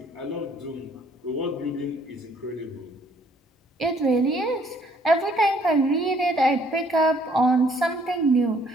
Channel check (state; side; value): normal; both; correlation 0.63